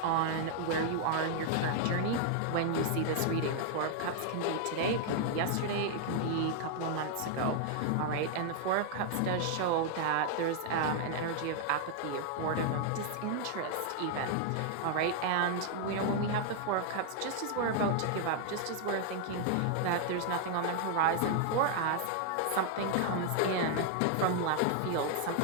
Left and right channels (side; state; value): both; different; correlation 0.00